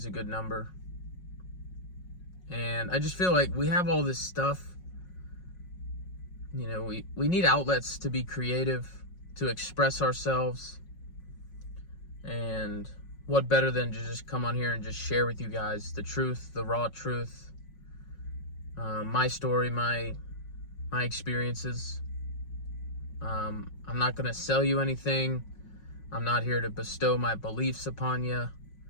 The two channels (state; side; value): late; right; 5.5 ms